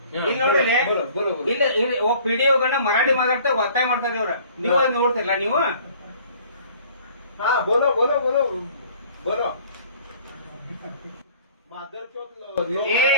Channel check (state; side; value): inverted; both; correlation -0.52